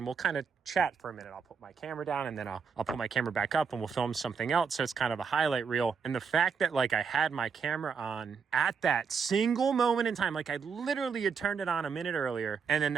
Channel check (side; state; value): left; quieter; 6.0 dB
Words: we'll kind of chat for a minute. I'll put my camera down, and then I'll put my camera back up, and we'll film something else. So it's kind of a highlight reel. And the fact that, like, I had my camera on at that single moment in time, like, I literally had turned it on a minute earlier, and then